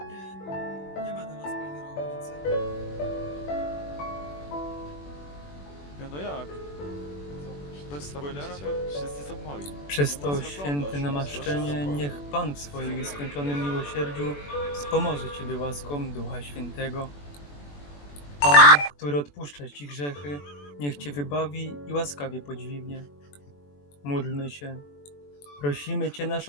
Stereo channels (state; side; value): late; right; 21 ms